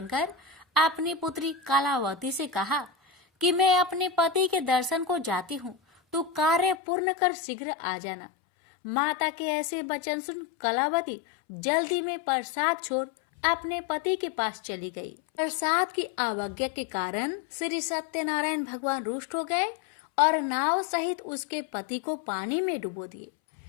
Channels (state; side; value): drops out; right; at 6.8 s